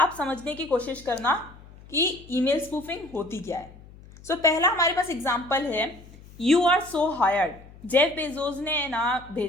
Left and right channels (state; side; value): noise; left; hum, 21 dB below the sound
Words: समझने की कोशिश करना कि ईमेल स्पूफिंग होती क्या है। सो पहला हमारे पास एग्जांपल है, you are so hired. Jeff Bezos ने ना